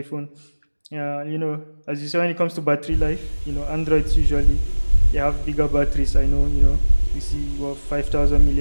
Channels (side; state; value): both; inverted; correlation -1.00